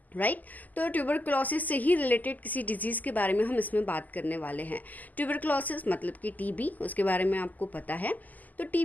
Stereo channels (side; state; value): right; late; 0.081 ms